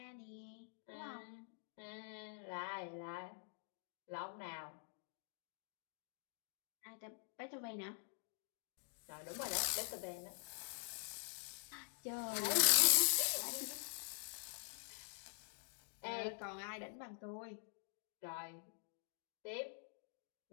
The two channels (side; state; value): right; silent; digital silence